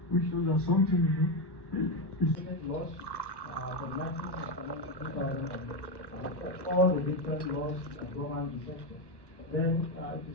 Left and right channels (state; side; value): late; right; 1.1 ms